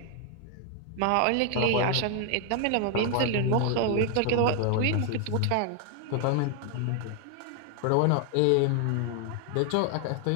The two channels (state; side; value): different; both; correlation 0.00